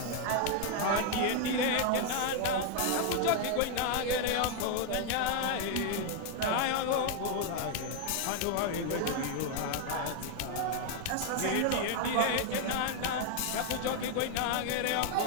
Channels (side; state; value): both; different; correlation 0.00